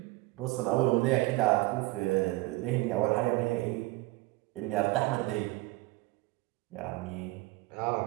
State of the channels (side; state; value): left; quieter; 21.5 dB